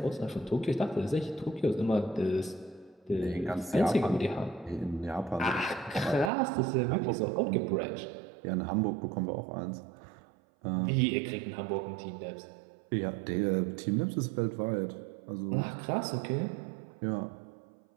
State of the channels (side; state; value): left; drops out; at 6.3 s